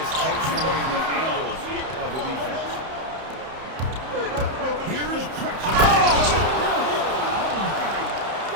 takes away the angles of the defense. Here's Drexler.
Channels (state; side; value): late; left; 31 ms